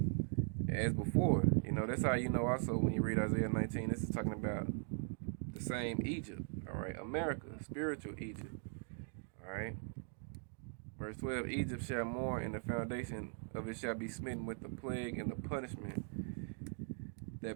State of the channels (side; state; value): left; silent; 51 dB below the other